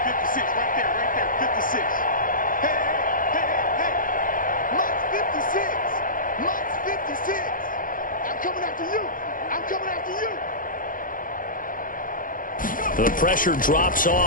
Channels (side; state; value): right; late; 0.40 ms